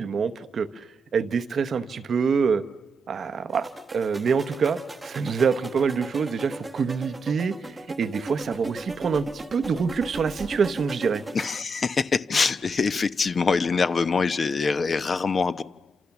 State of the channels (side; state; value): both; normal; correlation 0.83